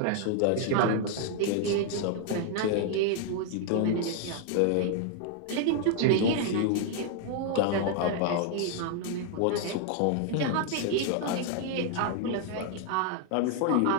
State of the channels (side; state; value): both; different; correlation 0.00